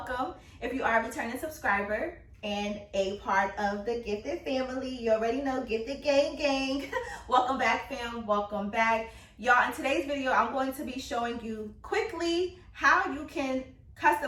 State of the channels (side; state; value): both; identical; correlation 1.00